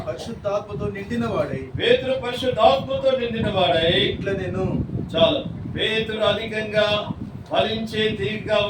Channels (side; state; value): both; identical; correlation 1.00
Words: పరిశుద్ధాత్మతో నిండిన వాడై పేతురు పరిశుద్ధాత్మతో నిండిన వాడై ఇట్లా నేను చాలు. పేతురు అధికంగా ఫలించే తీగగా